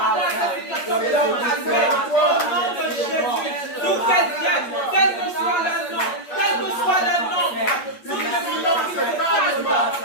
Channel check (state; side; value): late; right; 8.5 ms